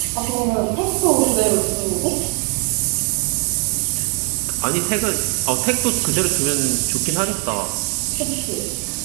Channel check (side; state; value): left; quieter; 36.9 dB